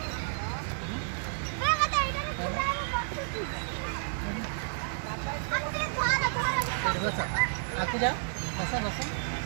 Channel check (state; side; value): silent; left; digital silence